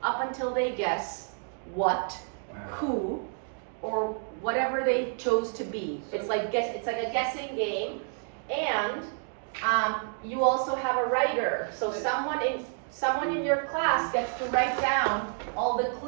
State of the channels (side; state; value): left; silent; 58 dB below the other